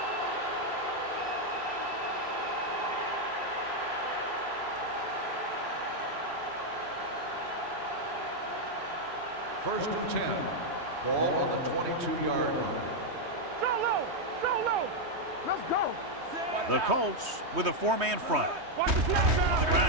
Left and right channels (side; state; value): left; late; 3.2 ms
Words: First and 10. Ball on the 22-yard line. Go low, go low. Let's go. The Colts with a 4-man front. Watch the snap. On the